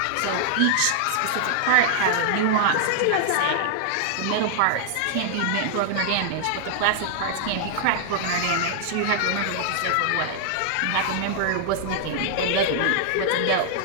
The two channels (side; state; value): both; different; correlation -0.01